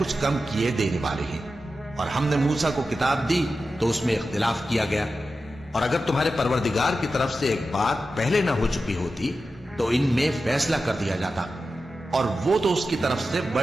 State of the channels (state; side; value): normal; both; correlation 0.92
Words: کم کیے دینے والے ہیں۔ اور ہم نے موسیٰ کو کتاب دی تو اس میں اختلاف کیا گیا، اور اگر تمہارے پروردگار کی طرف سے ایک بات پہلے نہ ہو چکی ہوتی تو ان میں فیصلہ کر دیا جاتا، اور وہ تو اس کی طرف سے